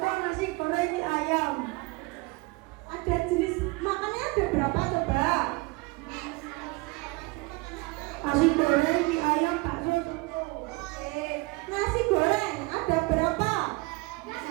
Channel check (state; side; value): quieter; left; 24.6 dB